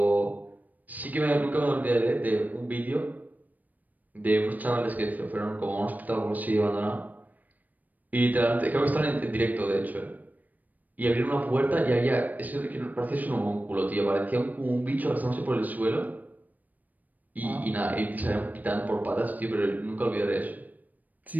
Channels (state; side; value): late; left; 0.082 ms